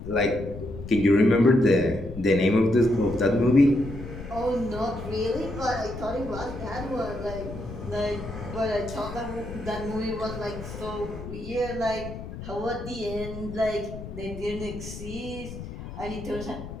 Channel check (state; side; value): noise; left; rumble, 10 dB below the sound